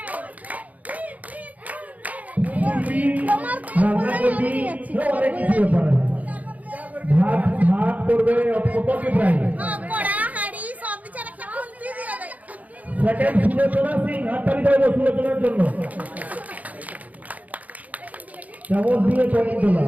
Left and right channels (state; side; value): late; left; 0.075 ms